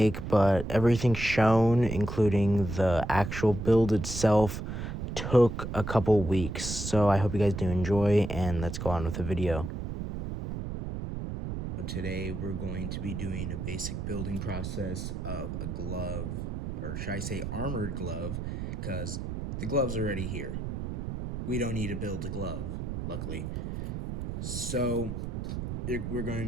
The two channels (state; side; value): noise; right; rumble, 5 dB below the sound